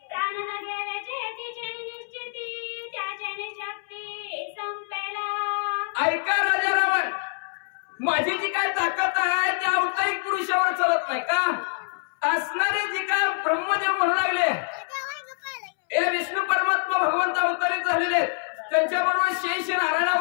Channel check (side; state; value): right; silent; 61 dB below the other